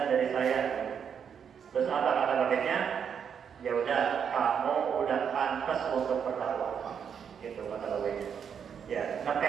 dari saya. Terus apa kata bapaknya? Ya udah, kamu udah pantas untuk berdakwah, gitu kata bapaknya. Ya,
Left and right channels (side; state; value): left; quieter; 7.5 dB